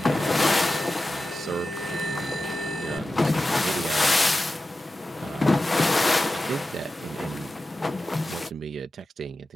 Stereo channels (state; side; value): normal; both; correlation 0.93